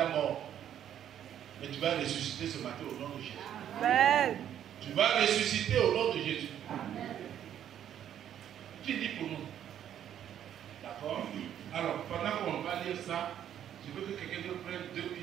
mort. Mais tu vas ressusciter ce matin au nom de Jésus. Amen. Tu vas ressusciter au nom de Jésus. Amen. Qui dit pour nous? D'accord? Alors, pendant qu'on va lire ça, je veux que quelqu'un nous prenne 2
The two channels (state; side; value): quieter; left; 10.2 dB